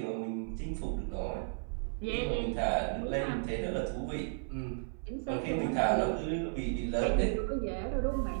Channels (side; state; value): left; silent; 55 dB below the other